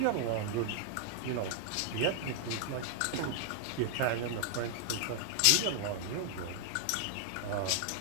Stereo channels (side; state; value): both; different; correlation 0.00